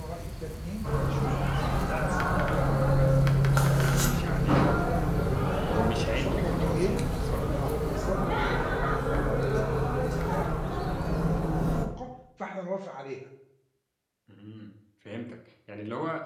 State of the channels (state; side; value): identical; both; correlation 1.00